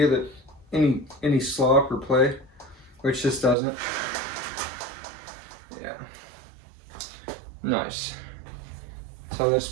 that any slop or play, which this doesn't. Yeah. Nice. So let's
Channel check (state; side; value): drops out; left; at 3.6 s